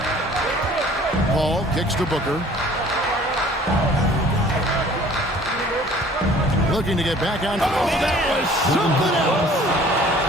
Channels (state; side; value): normal; both; correlation 0.52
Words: Paul kicks to Booker. Looking to get back on. Oh, that was something else.